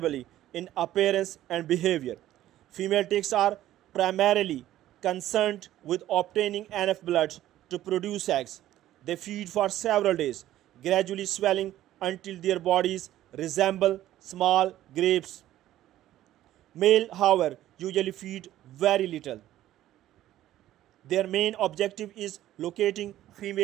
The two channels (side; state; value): left; quieter; 13.5 dB